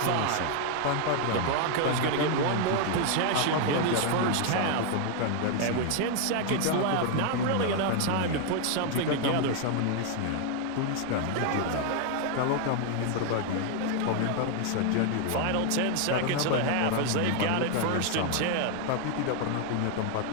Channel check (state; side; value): different; both; correlation 0.00